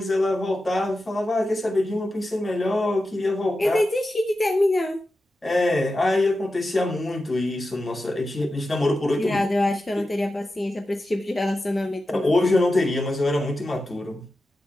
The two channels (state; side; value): normal; both; correlation 0.92